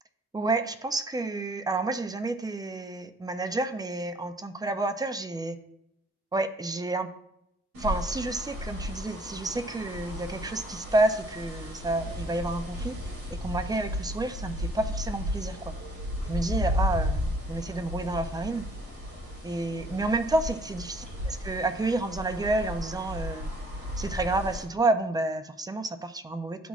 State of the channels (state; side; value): normal; both; correlation 0.60